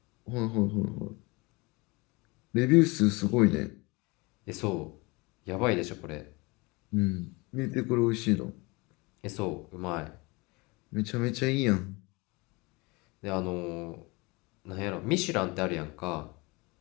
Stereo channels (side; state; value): right; quieter; 25.8 dB